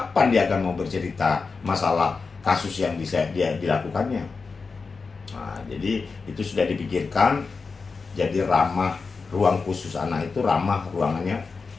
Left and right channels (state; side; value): quieter; right; 4.6 dB